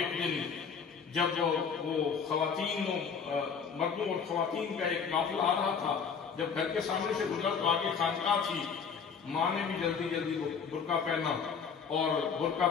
دن جب وہ خواتین مردوں اور خواتین کا ایک قافلہ آ رہا تھا، جب گھر کے سامنے سے گزرا تو آگے خانقاہ تھی، ماں نے بھی جلدی جلدی برقع پہنا اور برقع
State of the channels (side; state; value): right; quieter; 6.3 dB